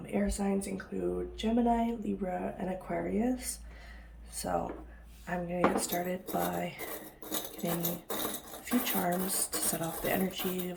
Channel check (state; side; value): identical; both; correlation 1.00